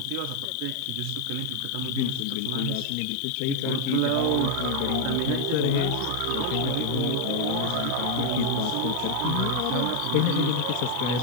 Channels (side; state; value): both; different; correlation 0.00